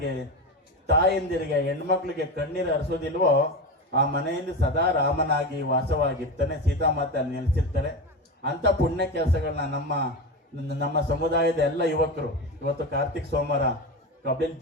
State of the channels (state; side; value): normal; both; correlation 0.21